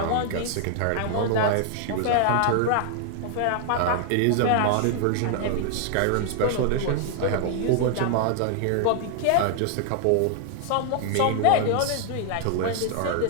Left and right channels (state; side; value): different; both; correlation 0.00